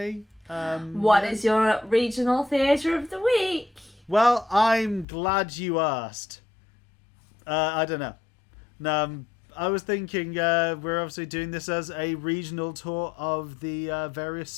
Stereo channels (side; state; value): right; drops out; at 5.1 s